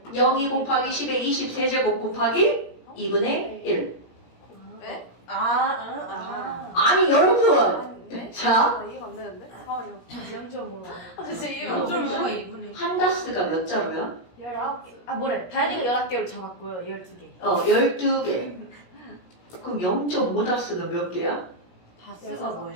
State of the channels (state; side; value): late; right; 17 ms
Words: 02 곱하기 10의 20세제곱 곱하기 2분의 1. 네? 아니 여러분, 아닌데? 자, 나 이해가 안 되는데? 잠깐만요. 0.5로. 아, 진짜 이해가 안 좀 돼. 누가 이분이. 한 다스가 몇 자루야? 19개. 아, 뭐래. 다현이가 11개로 잡았고요. 12개. 12개. 그럼 0.5 다스는 몇 개야? 다스가